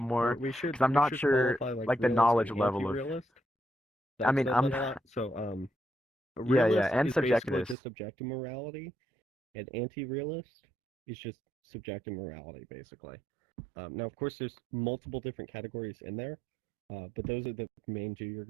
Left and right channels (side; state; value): left; drops out; at 7.8 s